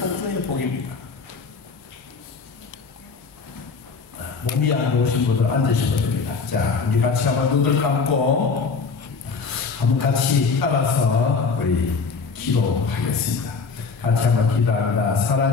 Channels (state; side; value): quieter; right; 4.9 dB